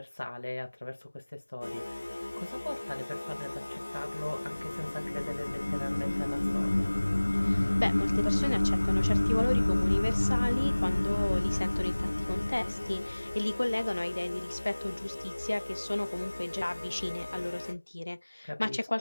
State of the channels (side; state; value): both; inverted; correlation -1.00